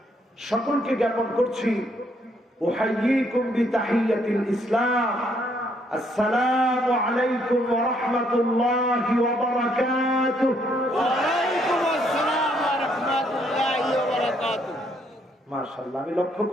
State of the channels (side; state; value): both; normal; correlation 0.70